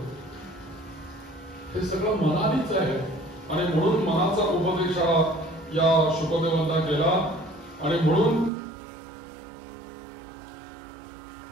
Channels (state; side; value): drops out; left; at 8.5 s